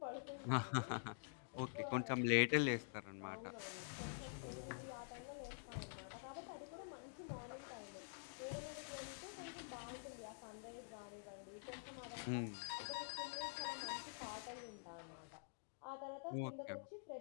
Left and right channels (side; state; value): right; silent; digital silence